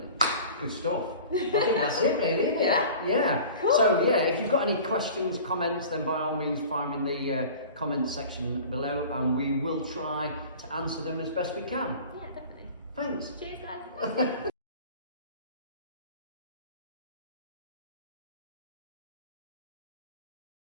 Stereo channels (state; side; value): inverted; both; correlation -0.41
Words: Good stuff. I think that's it really, isn't it? Yeah. Cool. So if you've got any questions, comments, then by all means find them in the comments section below and we will try to answer them as best we can. Yeah, definitely. Thanks. Cheers guys.